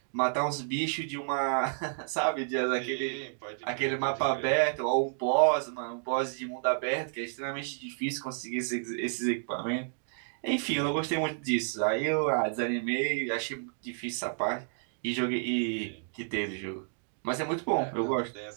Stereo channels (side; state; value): left; silent; digital silence